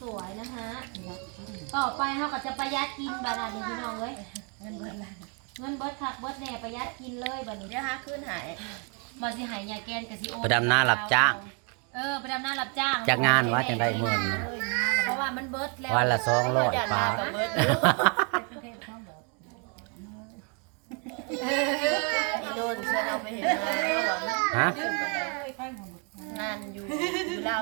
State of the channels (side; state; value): left; quieter; 36.8 dB